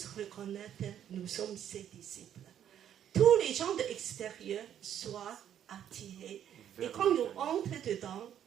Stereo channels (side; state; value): left; quieter; 10.0 dB